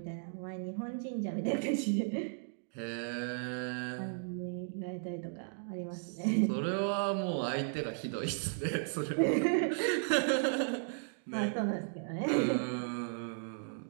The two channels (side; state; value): left; silent; digital silence